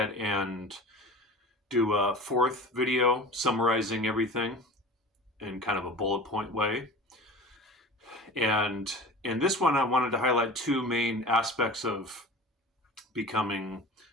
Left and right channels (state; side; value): normal; both; correlation 0.37